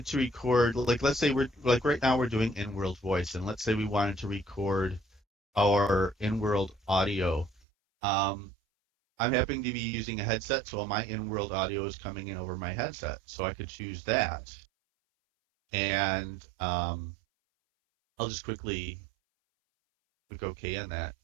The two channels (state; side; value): drops out; left; at 7.6 s